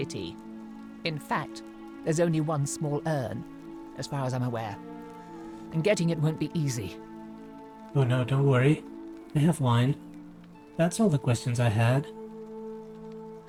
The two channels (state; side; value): identical; both; correlation 1.00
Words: In fact, there's only one small urn, as far as I'm aware. And getting it won't be easy. Oh no, don't worry. I have wine. That's all the questions I had.